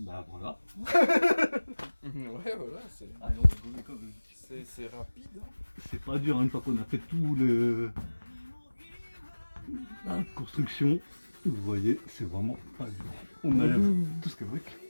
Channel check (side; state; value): both; inverted; correlation -1.00